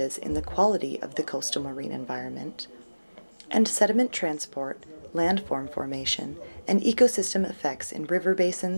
in the quality of the coastal marine environment, and sediment transport, landform formation, and ecosystem effects in river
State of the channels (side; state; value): both; inverted; correlation -1.00